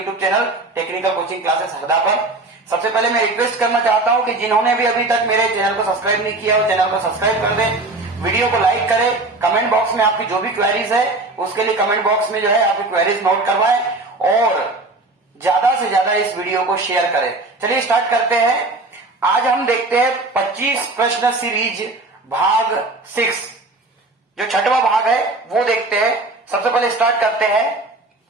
channel technical coaching classes Harda पर। सबसे पहले मैं रिक्वेस्ट करना चाहता हूं कि जिन्होंने भी अभी तक मेरे चैनल को सब्सक्राइब नहीं किया हो, चैनल को सब्सक्राइब कर दें, वीडियो को लाइक करें, कमेंट बॉक्स में आपकी जो भी क्वेरीज है उसके लिए कमेंट बॉक्स में जो है आपकी क्वेरीज नोट करवाएं और ज्यादा से ज्यादा इस वीडियो को शेयर करें। चलिए स्टार्ट करते हैं। आज हम देखते हैं 25 प्रश्न सीरीज भाग 6, जो छठवां भाग है वो देखते हैं। सबसे पहले स्टार्ट करते हैं।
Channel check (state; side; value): quieter; left; 3.0 dB